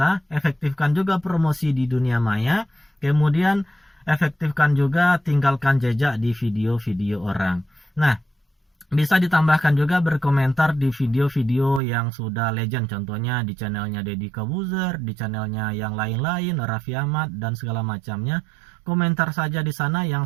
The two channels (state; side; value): drops out; left; at 11.8 s